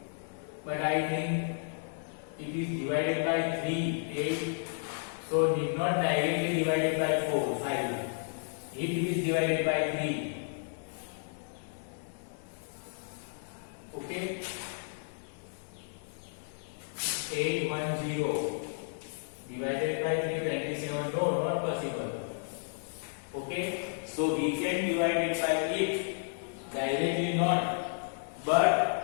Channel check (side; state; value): right; silent; digital silence